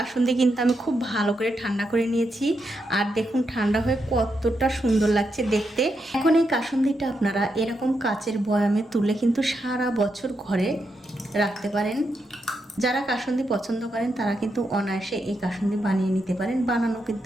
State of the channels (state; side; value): normal; both; correlation 0.83